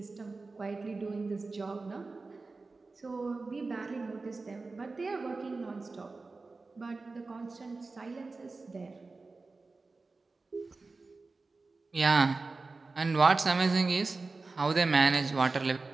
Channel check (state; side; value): quieter; left; 3.8 dB